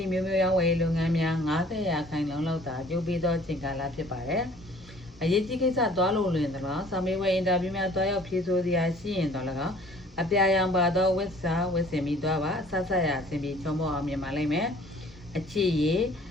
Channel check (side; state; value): both; normal; correlation 0.53